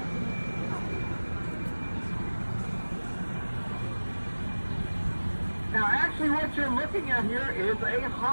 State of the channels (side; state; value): both; inverted; correlation -1.00